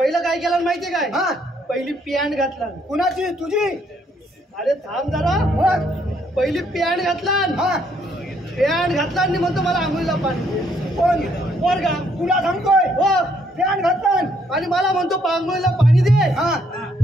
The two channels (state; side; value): normal; both; correlation 0.69